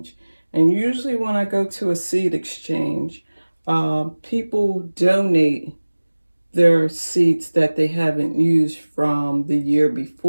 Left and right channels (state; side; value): inverted; both; correlation -1.00